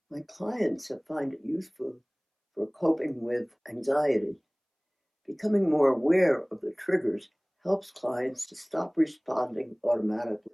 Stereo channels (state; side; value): identical; both; correlation 1.00